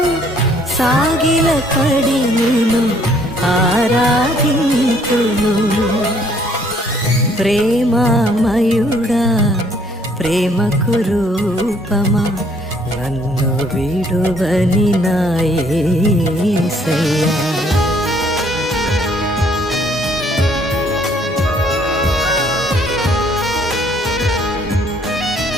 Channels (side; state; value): both; normal; correlation 0.63